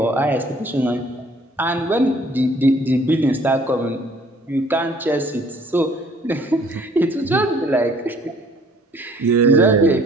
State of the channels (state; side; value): normal; both; correlation 0.57